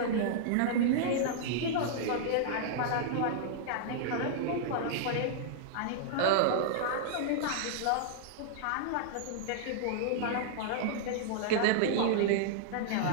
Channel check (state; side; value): different; both; correlation -0.02